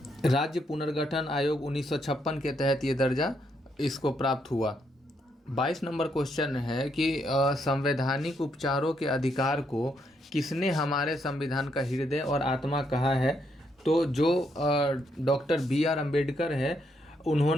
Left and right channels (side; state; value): both; normal; correlation 0.76